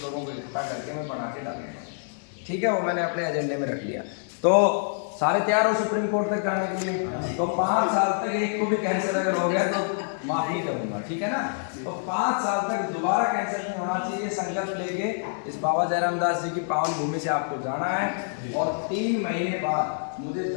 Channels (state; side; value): silent; right; 56 dB below the other